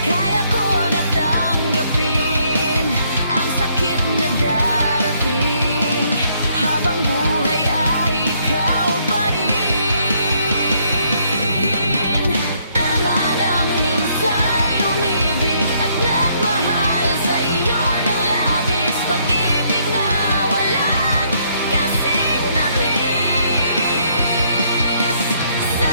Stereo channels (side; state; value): both; inverted; correlation -0.69